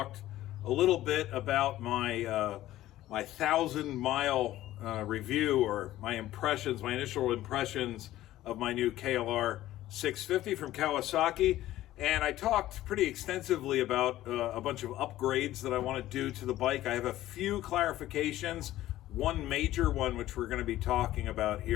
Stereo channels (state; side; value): quieter; right; 14.7 dB